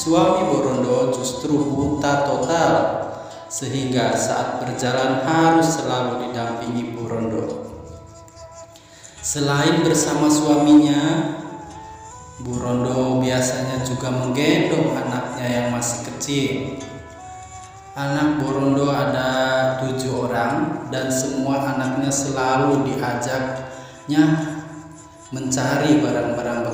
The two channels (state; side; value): identical; both; correlation 1.00